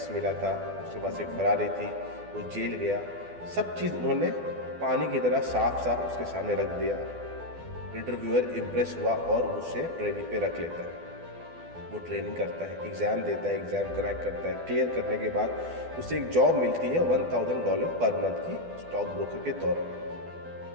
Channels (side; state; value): left; late; 12 ms